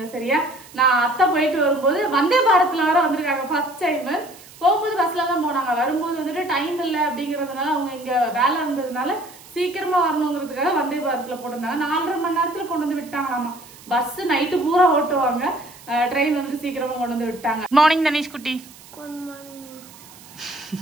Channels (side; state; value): right; noise; hiss, 21 dB below the sound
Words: சரியா? நான் அத்தா போயிட்டு வரும்போது வந்தே பாரத்ல வர வந்திருக்காங்க ஃபர்ஸ்ட் டைம். போகும்போது பஸ்ல தான் போனாங்க. வரும்போது வந்துட்டு டைம் இல்லை அப்படிங்கறதுனால அவங்க இங்க வேலை இருந்ததுனால சீக்கிரமா வரணுங்கிறதுக்காக வந்தே பாரத்ல போட்டிருந்தாங்க. 4.5 மணி நேரத்துல கொண்டு வந்து விட்டாங்களாமா. பஸ் நைட்டு பூரா ஓட்டுவாங்க, ட்ரெயின் வந்துட்டு சீக்கிரமா கொண்டு வந்து விட்டாங்க. மார்னிங் தனிஷ் குட்டி.